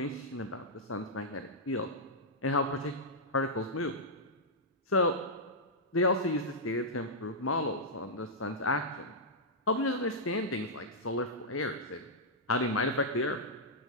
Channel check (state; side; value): normal; both; correlation -0.09